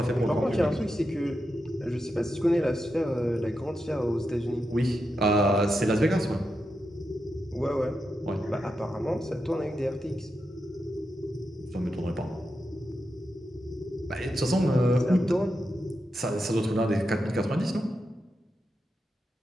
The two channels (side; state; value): both; normal; correlation 0.87